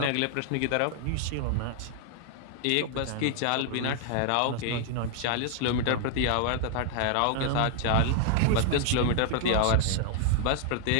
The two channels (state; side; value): different; both; correlation 0.00